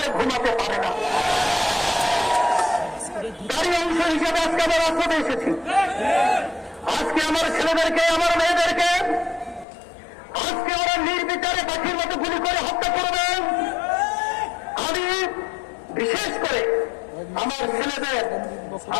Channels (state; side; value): drops out; right; at 9.7 s